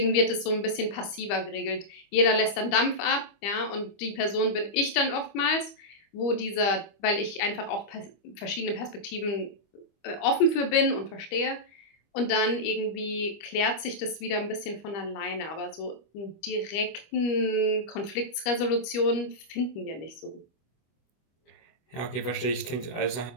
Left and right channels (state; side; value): late; right; 25 ms